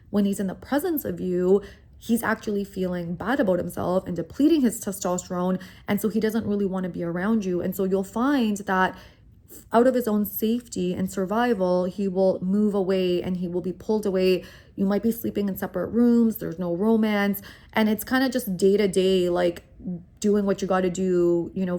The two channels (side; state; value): both; identical; correlation 1.00